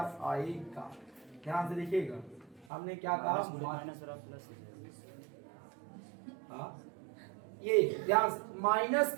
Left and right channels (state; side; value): drops out; left; at 2.7 s